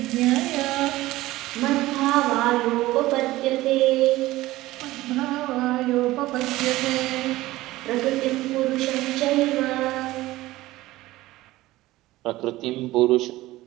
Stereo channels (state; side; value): quieter; left; 17.5 dB